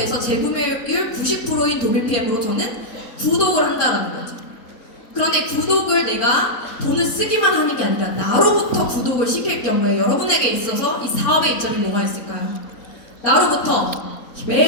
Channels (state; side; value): late; right; 4.4 ms